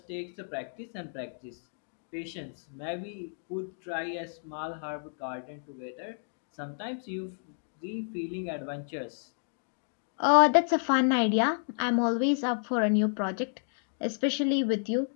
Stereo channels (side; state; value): right; silent; digital silence